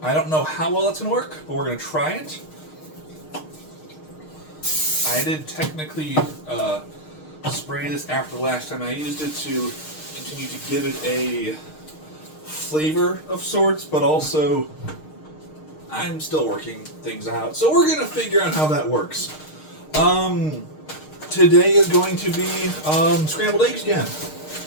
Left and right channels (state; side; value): late; right; 6.5 ms